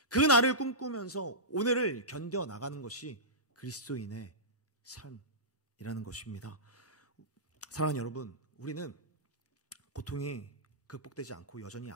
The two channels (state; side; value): normal; both; correlation -0.17